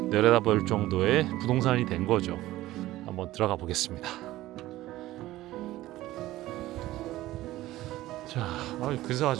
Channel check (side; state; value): left; quieter; 16.2 dB